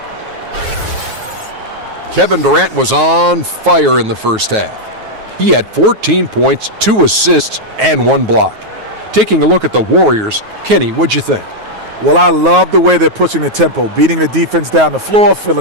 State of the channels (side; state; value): left; late; 9.4 ms